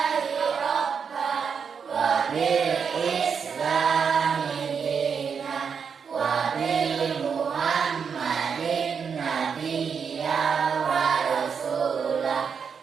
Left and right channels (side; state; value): left; quieter; 6.4 dB